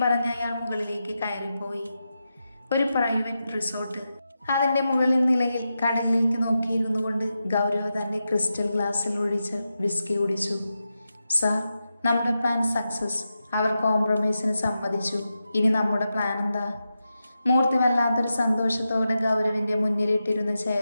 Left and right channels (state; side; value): inverted; both; correlation -0.89